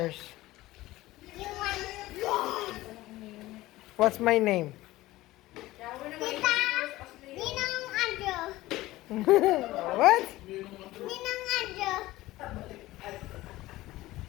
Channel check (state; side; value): quieter; right; 17.5 dB